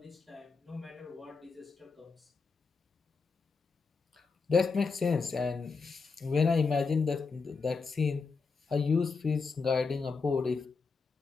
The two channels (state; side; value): quieter; right; 4.7 dB